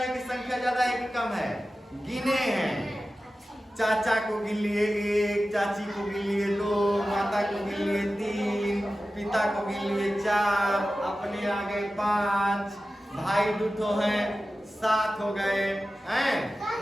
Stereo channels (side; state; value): both; normal; correlation 0.94